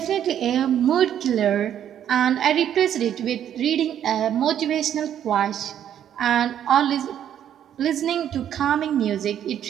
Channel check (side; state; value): left; quieter; 10.0 dB